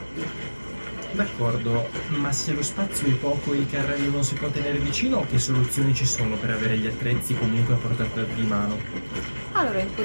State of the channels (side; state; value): both; inverted; correlation -1.00